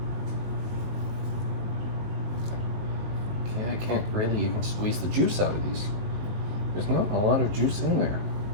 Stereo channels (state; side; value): late; left; 19 ms